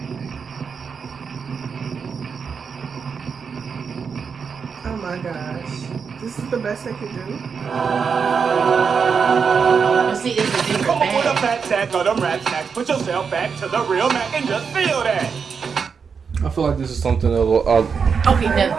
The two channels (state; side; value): quieter; left; 6.0 dB